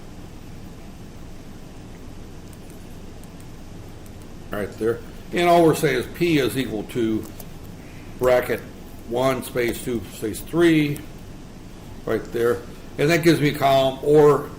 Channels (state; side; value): identical; both; correlation 1.00